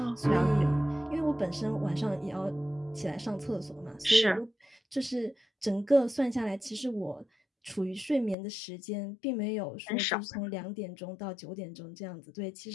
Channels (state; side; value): drops out; right; at 8.3 s